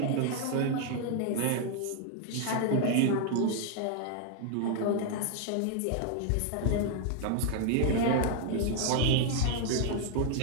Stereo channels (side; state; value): both; different; correlation 0.00